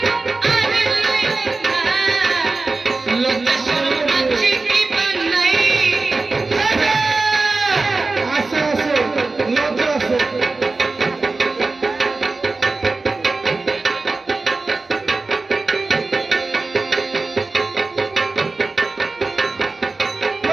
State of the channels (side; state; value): left; quieter; 3.6 dB